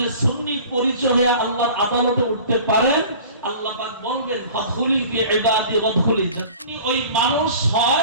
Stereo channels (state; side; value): inverted; both; correlation -0.44